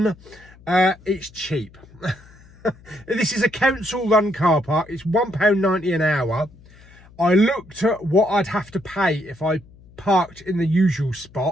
It's cheap. This is a council-run car park. It's £1.90 an hour. I looked at what I'd have to pay if I parked in the usual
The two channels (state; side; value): noise; left; hum, 24 dB below the sound